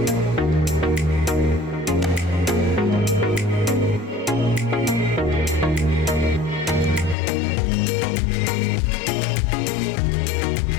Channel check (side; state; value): right; drops out; at 7.2 s